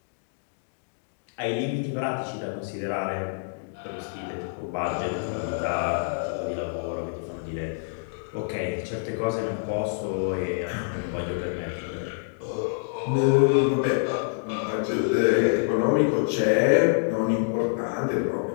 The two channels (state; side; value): silent; right; digital silence